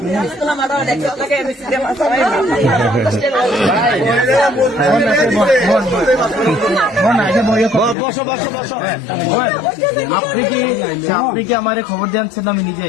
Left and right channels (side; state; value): right; drops out; at 8.0 s